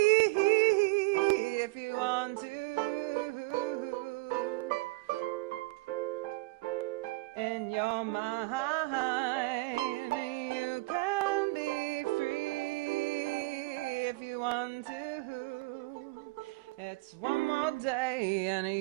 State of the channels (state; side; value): quieter; left; 23.0 dB